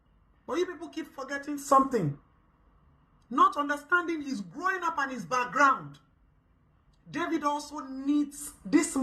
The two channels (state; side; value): identical; both; correlation 1.00